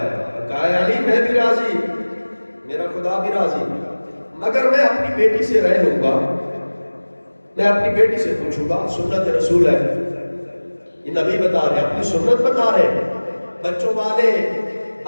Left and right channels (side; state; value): both; inverted; correlation -1.00